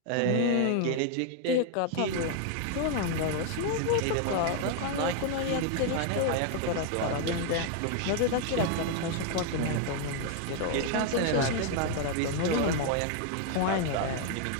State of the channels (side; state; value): both; different; correlation 0.00